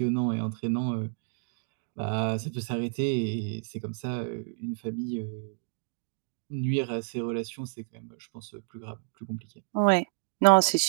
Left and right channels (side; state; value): left; silent; digital silence